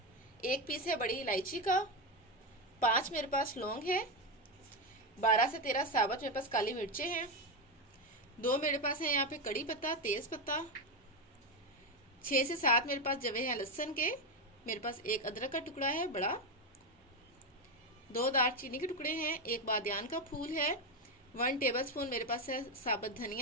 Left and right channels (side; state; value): both; normal; correlation 0.10